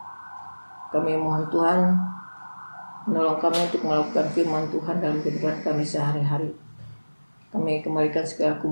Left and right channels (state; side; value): inverted; both; correlation -1.00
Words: Kami mohon Tuhan menolong kami untuk melakukan firman Tuhan dalam kehidupan kami sehari-hari. Kami kembalikan segala